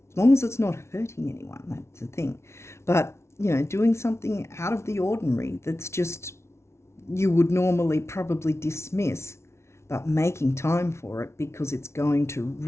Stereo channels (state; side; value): late; right; 0.13 ms